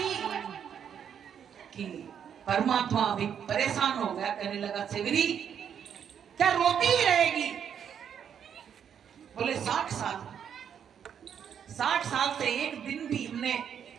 कि परमात्मा भी परेशान हो गया, कहने लगा सेवरी क्या रोती ही रहेगी। बोले 60 साल से एक दिन भी हमने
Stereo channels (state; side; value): quieter; left; 8.3 dB